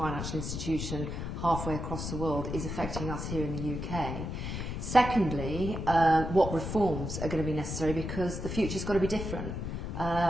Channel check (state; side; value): noise; left; rumble, 4 dB below the sound